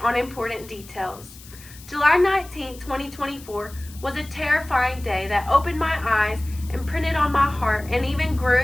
on important details. July 19, 2024 was a terrifying day that opened my eyes, imprinted on my heart, and even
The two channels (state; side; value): noise; left; hiss, 19 dB below the sound